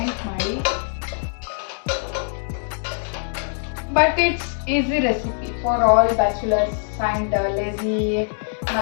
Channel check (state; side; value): silent; right; digital silence